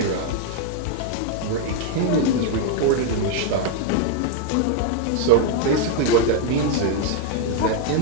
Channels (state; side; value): different; both; correlation 0.00